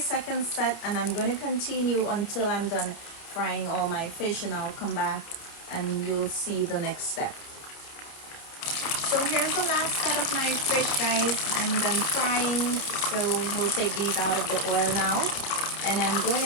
set, and I'm going to continue until I'm done frying all my fish, and I'll come back and you'll see the next step. So here's the last set of my fish, guys. I'm done frying, so we'll take these out of the oil now. And I'm going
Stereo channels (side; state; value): right; late; 30 ms